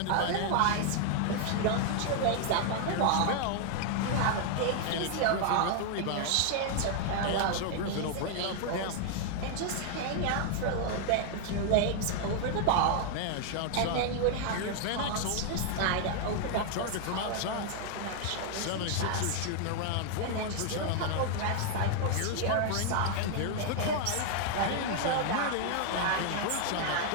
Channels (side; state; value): both; different; correlation 0.00